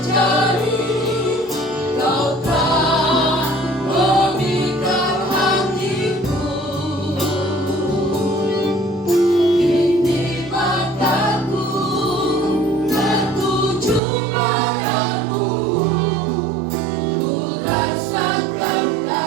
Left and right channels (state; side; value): drops out; left; at 14.0 s